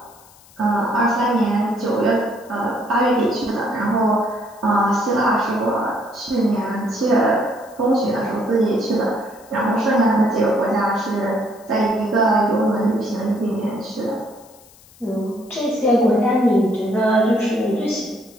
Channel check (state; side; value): noise; left; hiss, 26 dB below the sound